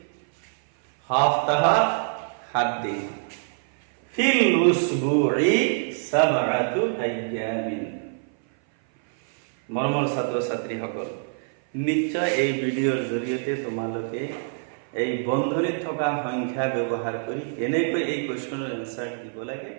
Haftaha 7 দিন। ফিল উসবুই 7 আইয়ামিন। মৰমৰ ছাত্ৰ ছাত্ৰীসকল, নিশ্চয় এই ভিডিঅ'ৰ জৰিয়তে তোমালোকে এই বন্ধনীত থকা সংখ্যা ব্যৱহাৰ কৰি কেনেকৈ এই কুৱেশ্যনৰ এনচাৰ দিব লাগে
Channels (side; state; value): left; silent; 58 dB below the other